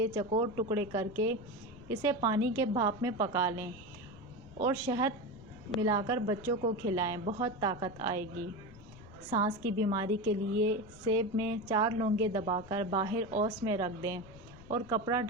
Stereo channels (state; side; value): noise; left; rumble, 20 dB below the sound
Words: चौकोर टुकड़े करके इसे पानी के भाप में पका लें और शहद मिलाकर बच्चों को खिलाएं, बहुत ताकत आएगी। सांस की बीमारी के लिए सेब में 4 लौंगे दबाकर बाहर औस में रख दें और कपड़ा